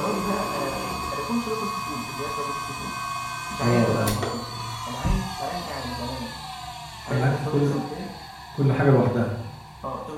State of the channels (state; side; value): identical; both; correlation 1.00